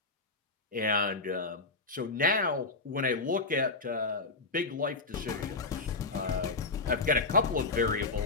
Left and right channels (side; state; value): right; quieter; 3.6 dB